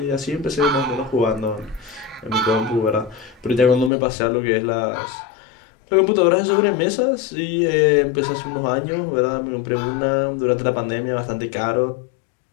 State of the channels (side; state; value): right; drops out; at 3.9 s